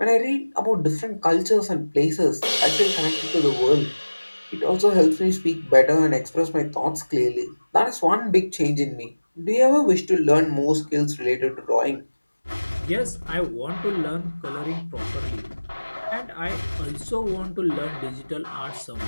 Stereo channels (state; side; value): inverted; both; correlation -1.00